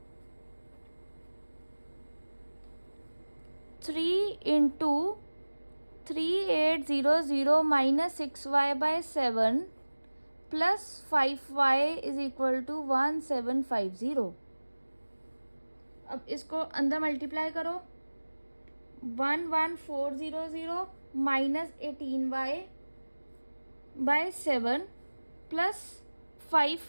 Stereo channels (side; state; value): both; inverted; correlation -1.00